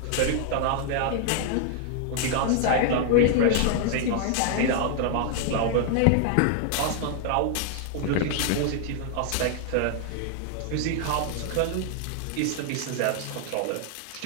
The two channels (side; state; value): both; different; correlation 0.00